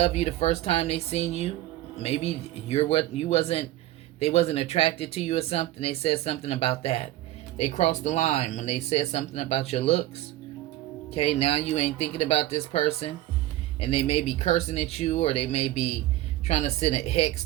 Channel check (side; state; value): left; quieter; 15.3 dB